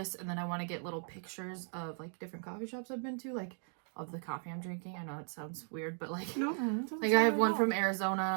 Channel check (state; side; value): silent; left; 53 dB below the other